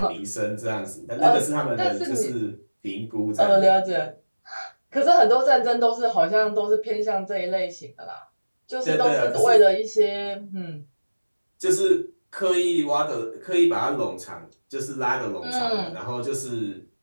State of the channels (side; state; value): both; inverted; correlation -1.00